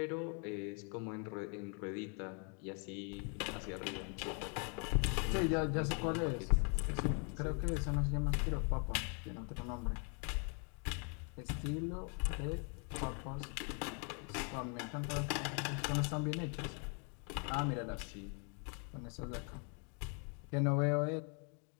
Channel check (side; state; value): right; quieter; 38.6 dB